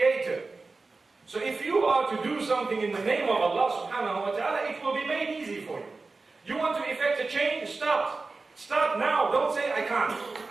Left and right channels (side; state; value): left; quieter; 3.8 dB